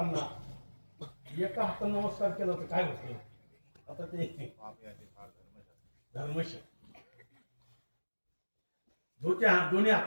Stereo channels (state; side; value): inverted; both; correlation -1.00